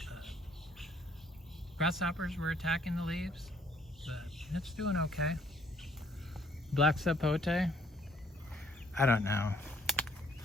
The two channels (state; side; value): normal; both; correlation 0.63